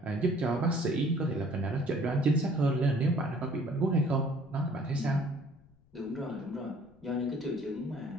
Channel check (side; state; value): left; noise; rumble, 30 dB below the sound